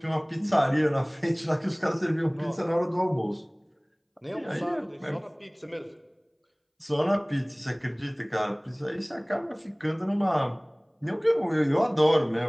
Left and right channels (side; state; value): both; identical; correlation 1.00